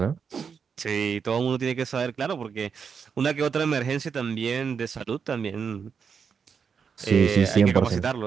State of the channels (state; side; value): quieter; left; 6.3 dB